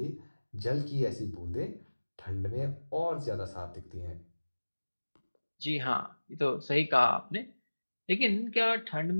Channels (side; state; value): both; inverted; correlation -1.00